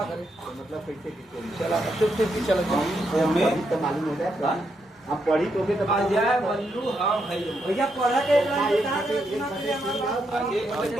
मतलब कैसे चला मालूम हो जाए आप पढ़ी तो भी अजय बल्लू हम है भैया पढ़ा के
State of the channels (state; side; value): normal; both; correlation 0.80